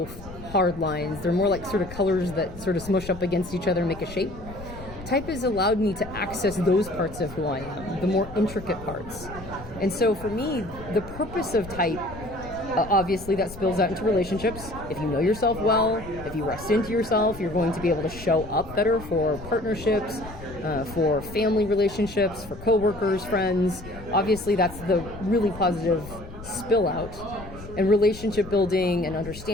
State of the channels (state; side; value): noise; left; rumble, 14 dB below the sound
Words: hard lines. They're more like sort of colors that sort of smush up against each other and make a shape. Type has allowed me to access those parts of who I am, the more intricate parts. And so for me, the purpose of type, obviously that spills out into relationships. If you know yourself well, if you rest into yourself, you're going to be able to show up better for partnerships, for family relationships, for coworkers, friends. Obviously that's the really positive spill out. And relationship building and